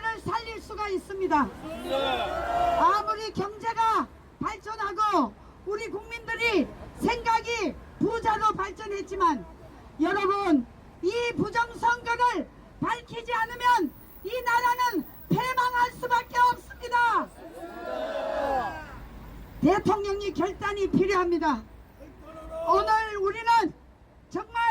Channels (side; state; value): both; identical; correlation 1.00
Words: 살릴 수가 있습니다. 아무리 경제가 발전하고 우리 국민들이 생각이 부자로 발전했지만 여러분, 이 부정선거를 밝히지 않으면 이 나라는 패망할 수밖에 없습니다. 대통령이 결단이 필요합니다. 오늘 우리는